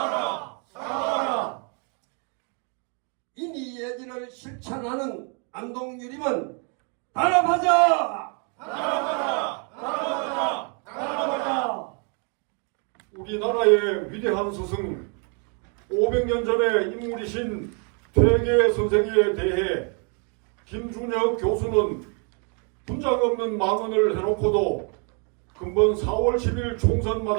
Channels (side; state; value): left; quieter; 38.0 dB